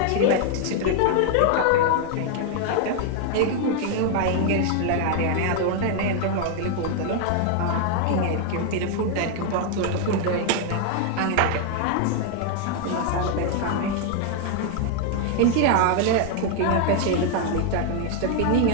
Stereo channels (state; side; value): different; both; correlation 0.00